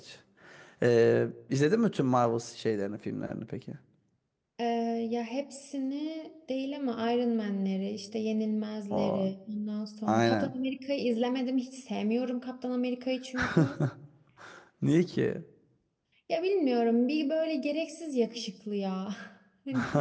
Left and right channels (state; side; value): identical; both; correlation 1.00